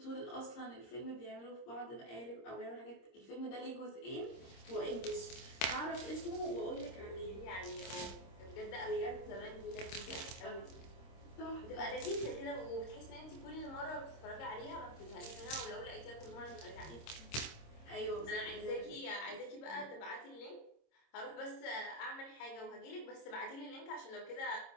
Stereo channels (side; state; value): right; late; 26 ms